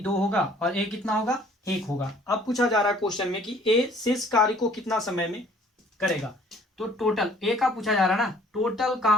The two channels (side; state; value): both; normal; correlation 0.57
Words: 2 होगा और ए कितना होगा 1 होगा। अब पूछा जा रहा है क्वेश्चन में कि ए शेष कार्य को कितना समय में करेगा। तो टोटल ए का पूछा जा रहा है ना, टोटल